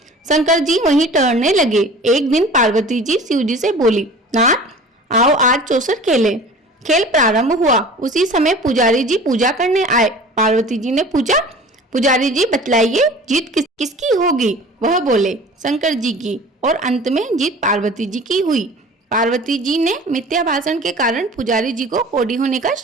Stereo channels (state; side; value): normal; both; correlation 0.42